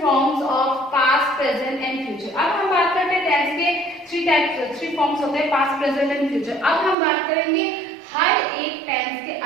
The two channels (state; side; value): drops out; left; at 7.0 s